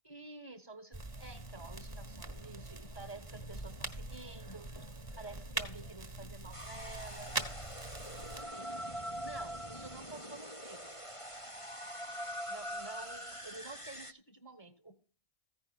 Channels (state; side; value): late; right; 1.0 ms